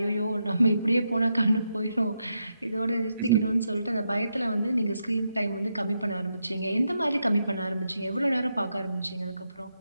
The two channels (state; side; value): inverted; both; correlation -0.83